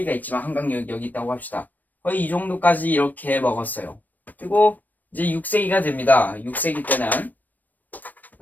있지만 한강유역이 여기 있다고 합시다. 거의 이 정도까지 이렇게 먹었어요. 그리고 이제 6세기가 됩니다. 6세기 때는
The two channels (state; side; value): late; right; 0.085 ms